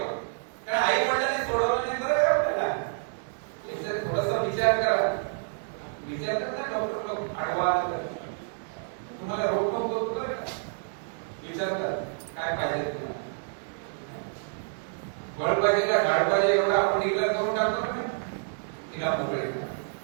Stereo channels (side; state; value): left; silent; 58 dB below the other